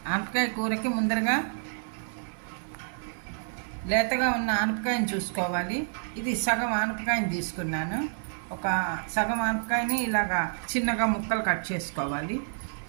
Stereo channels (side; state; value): left; silent; 59 dB below the other